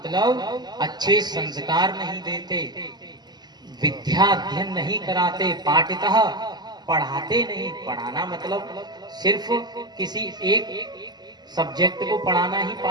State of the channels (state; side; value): late; left; 0.20 ms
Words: अच्छे संस्कार नहीं देते, विद्या अध्ययन नहीं कराते, पाठितः पढ़ाते नहीं। पढ़ाना मतलब सिर्फ किसी एक सब्जेक्ट को पढ़ाना ही